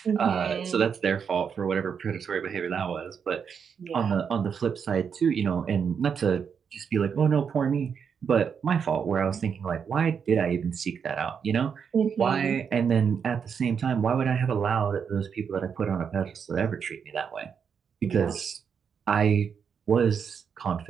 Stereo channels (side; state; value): left; quieter; 6.8 dB